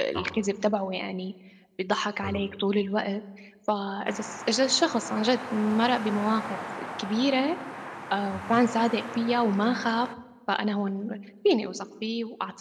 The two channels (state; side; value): identical; both; correlation 1.00